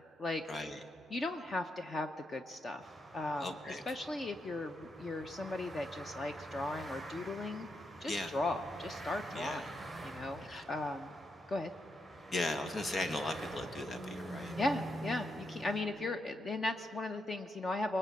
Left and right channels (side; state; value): both; normal; correlation 0.82